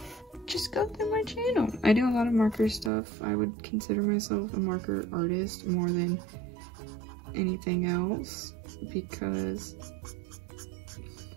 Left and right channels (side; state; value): left; drops out; at 2.9 s